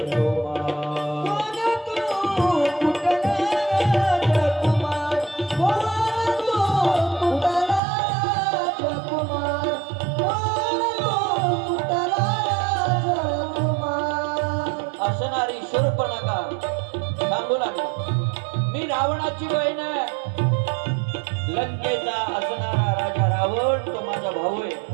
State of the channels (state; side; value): drops out; left; at 7.8 s